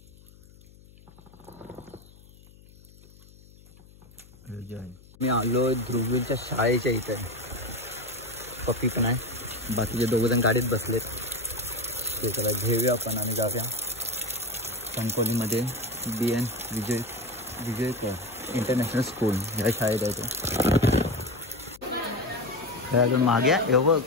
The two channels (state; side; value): noise; left; hum, 24 dB below the sound